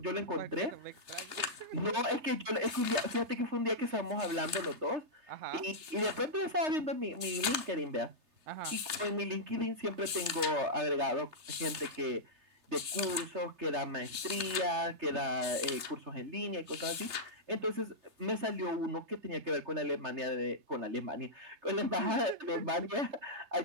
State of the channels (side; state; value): left; late; 3.3 ms